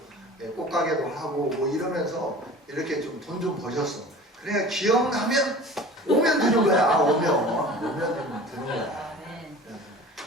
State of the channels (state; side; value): normal; both; correlation 0.41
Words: 꽃가게도 하고 뭐 이러면서 이렇게 좀 돈 좀 버셨어. 그래 기억나면 오면 되는 거야. 오면 되는 거야.